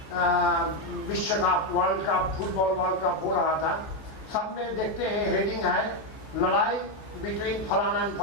विश्व cup, world cup, football world cup हो रहा था। सब में देखते हैं हेडिंग है लड़ाई बिटवीन फलाना एंड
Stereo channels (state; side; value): late; right; 14 ms